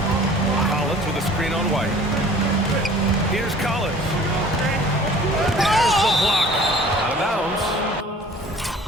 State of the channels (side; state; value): both; normal; correlation 0.49